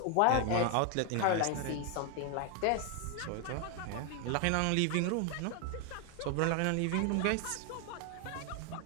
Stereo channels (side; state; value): both; different; correlation 0.01